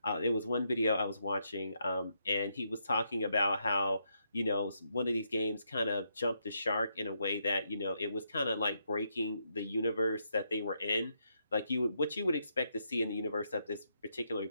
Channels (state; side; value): inverted; both; correlation -0.79